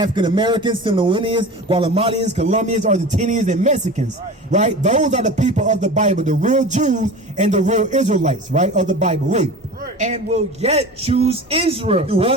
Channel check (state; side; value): normal; both; correlation 0.34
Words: Americans, Samoanians, Guatemalans, Colombians, Argentinians, and Mexicans, right? Those are the people of the Bible, the real Jews and the real Israelites, right, of the Bible. Read. And will yet choose Israel. Do